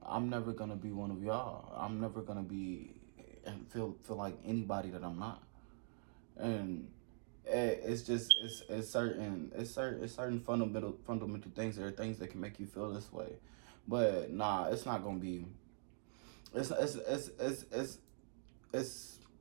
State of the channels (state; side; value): silent; left; digital silence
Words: I'm never gonna be one of y'all. I'm never gonna be and feel like anybody that I'm not. And it's certain fundamental things. There are things that can make you feel this way, but nah, it's not gonna be. It's not